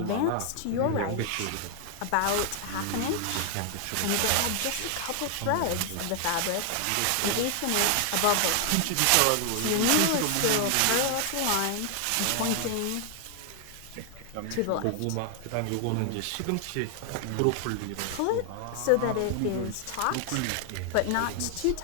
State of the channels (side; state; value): both; different; correlation 0.00